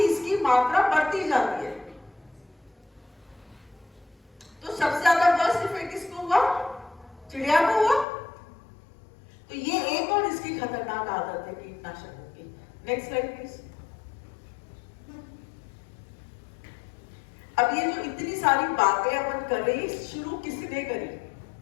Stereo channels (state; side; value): drops out; right; at 8.1 s